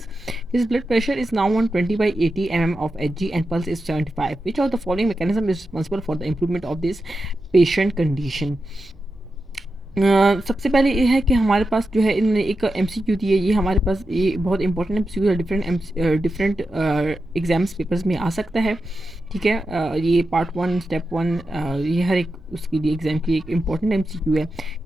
His blood pressure is now 120 by 80 mm of Hg and pulse is 75. Which of the following mechanism is responsible for the improvement of this patient condition? सबसे पहले ये है कि हमारे पास जो है इन्होंने एक एमसीक्यू दी है। ये हमारे पास ये बहुत इंपॉर्टेंट एमसीक्यू है, डिफरेंट एग्जाम्स पेपर्स में आ सकता है। ठीक है, ये पार्ट 1 स्टेप 1 ये हर एक उसके लिए एग्ज़ाम के लिए एक इंपॉर्टेंट एमसीक्यू है।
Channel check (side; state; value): both; normal; correlation 0.90